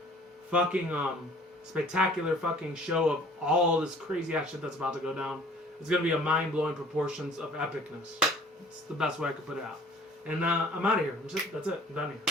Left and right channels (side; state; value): both; normal; correlation 0.51